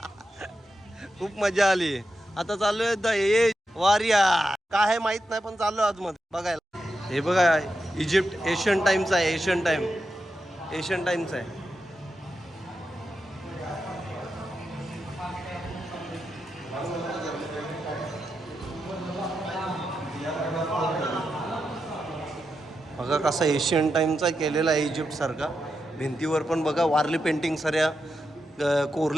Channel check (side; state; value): both; normal; correlation 0.87